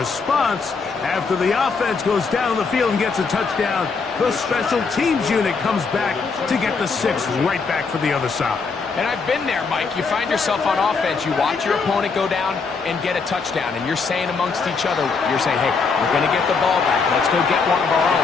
After the offense goes down the field and gets a touchdown, the special teams unit comes back to get the 6 right back for the other side. And I've been there, Mike. You find yourself on offense, you watch your opponent go down and get a touchdown, and you're saying amongst each other, you're saying, hey, we're going to get the ball back. Let's go get one of our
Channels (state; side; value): quieter; right; 4.8 dB